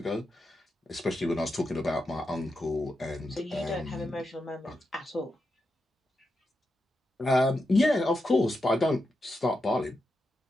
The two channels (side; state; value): both; normal; correlation 0.87